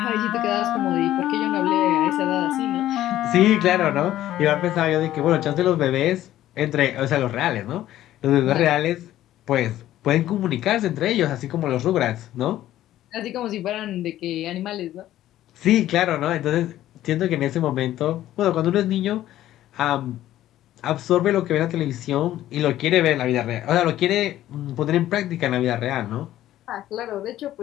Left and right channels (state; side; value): quieter; right; 13.5 dB